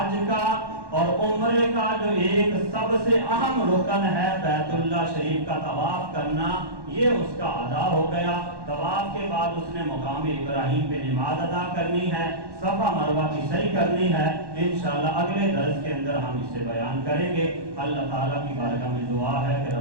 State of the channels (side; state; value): left; late; 1.1 ms